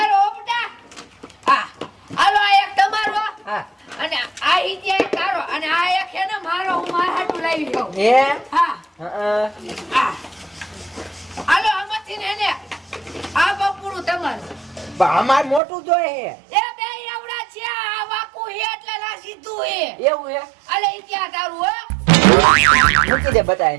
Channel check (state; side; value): drops out; left; at 15.6 s